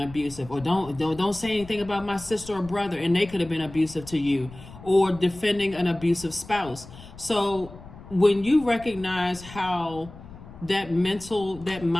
Or don't say anything about my sister or brother, and they could have been abusive to you. Or defending an abusive spouse. So when you recognize how that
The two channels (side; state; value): left; noise; rumble, 17 dB below the sound